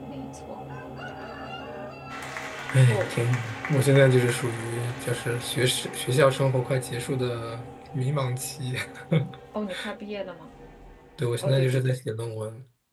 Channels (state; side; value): identical; both; correlation 1.00